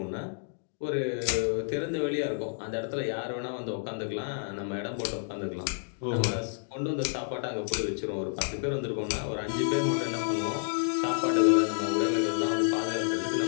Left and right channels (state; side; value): silent; right; digital silence